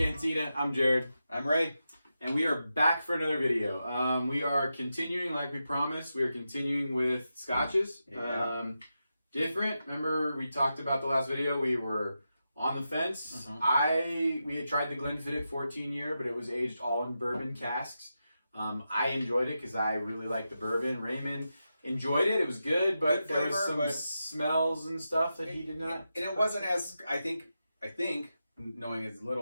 I'm Jared. I'm Ray. And we are back for another video. We are continuing, like we promised, we are continuing with Scotches. Yeah. Different. Remember we talked about the last video, we were on the fence. We had tried the Glenlivet 14 year, but it was aged all in bourbon casks. I enjoyed it because I really like the bourbon. Raymond enjoyed it. It was good, but there was some smells and stuff that he did not. And it wasn't as, I think, knowing as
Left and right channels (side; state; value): both; inverted; correlation -0.89